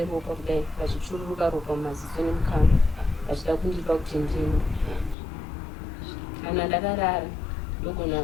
kudai vachichururuka ropa mumaziso nemukana vachida kundipa kuti ndimwe. Kana ndakarara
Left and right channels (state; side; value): drops out; right; at 5.2 s